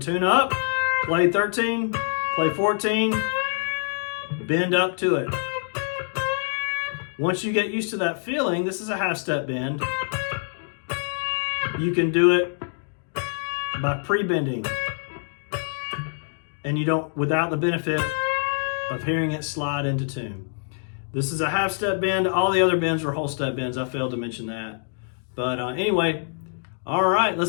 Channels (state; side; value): silent; right; digital silence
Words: tune up, play 13, play 14, bend up to it. Once you get used to that feeling, this is a half step bend. You can do it by pre-bending, and you don't, without the benefit of hearing it slide into tune. This is a half step bend. All the other bends are whole step bends. I failed to mention that. But anyway, all right,